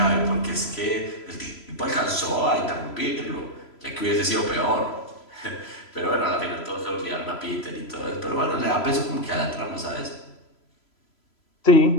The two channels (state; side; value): late; right; 3.0 ms